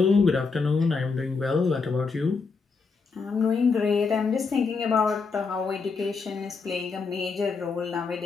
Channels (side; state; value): right; quieter; 4.7 dB